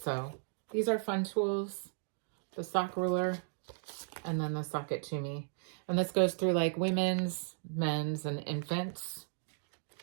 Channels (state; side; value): silent; left; digital silence